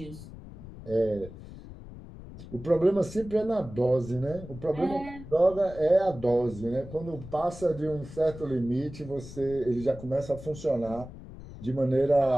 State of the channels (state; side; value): noise; left; rumble, 14 dB below the sound